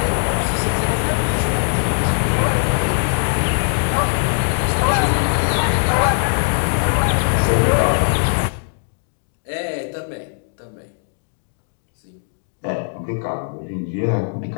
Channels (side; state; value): right; silent; digital silence